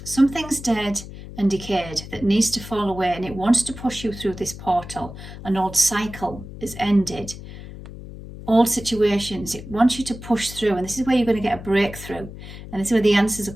Something's dead and decayed that needs to fall away, and it wants to push you through this portal. An old cycle is ended. Old situations, it wants you to push through, and this is where you're going to get a breakthrough, and this is where the answers are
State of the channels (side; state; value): left; noise; hum, 13 dB below the sound